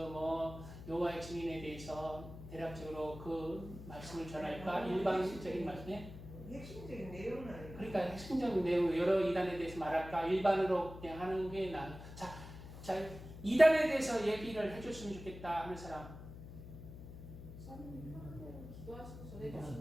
여호와의 증인에 대해서 대략적으로 그 말씀을 전할까? 일반적인 말씀에? 핵심적인 내용은 아니고. 그러니까 핵심적인 내용 여러 이단에 대해서 말할까? 일반으로 그냥 하는 게 나아. 자, 이단에 대해서 얘기를 해줬으면 좋겠다 하는 사람. 목사님이 하는 대로 기도하시고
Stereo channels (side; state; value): left; noise; hum, 13 dB below the sound